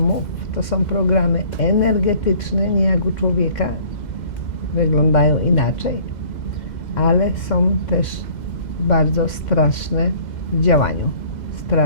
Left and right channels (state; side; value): late; right; 2.0 ms